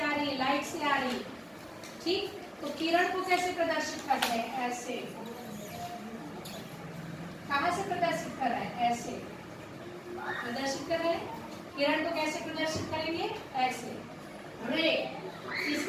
रही है, लाइट से आ रही है, ठीक। तो किरण को कैसे प्रदर्शित करते हैं, ऐसे। कहाँ से प्रदर्शित कर रहे हैं, ऐसे प्रदर्शित कर रहे हैं। किरण को कैसे प्रदर्शित करेंगे, ऐसे। रे,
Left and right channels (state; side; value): identical; both; correlation 1.00